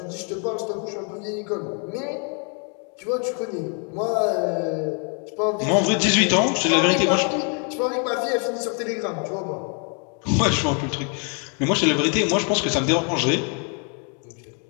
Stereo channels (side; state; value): right; quieter; 39.4 dB